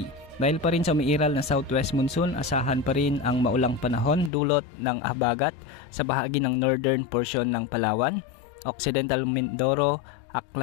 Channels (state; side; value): drops out; right; at 4.3 s